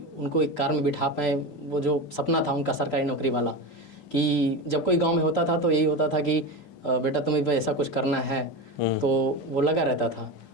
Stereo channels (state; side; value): late; right; 6.9 ms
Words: उनको एक कार में बिठा पाएँ, वो जो सपना था उनका सरकारी नौकरी वाला, कि जब कोई गाँव में होता था तो यही होता था कि बेटा तुम्हें भी ऐसा कुछ करना है। तो वो लगा रहता था।